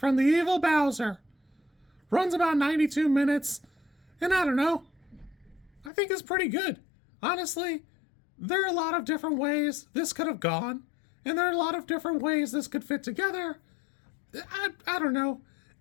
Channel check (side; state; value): right; drops out; at 5.9 s